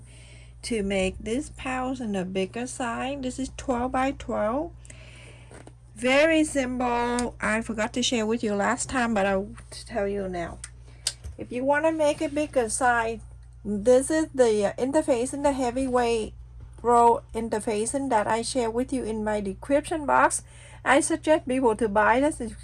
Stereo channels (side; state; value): both; identical; correlation 1.00